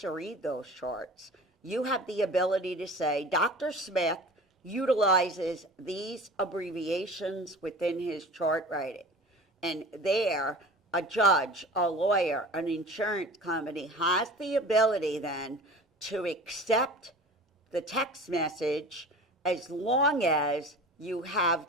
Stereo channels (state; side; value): normal; both; correlation 0.39